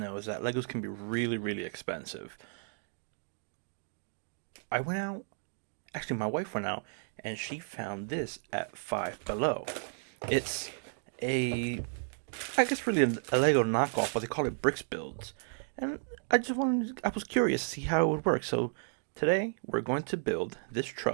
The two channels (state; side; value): silent; left; digital silence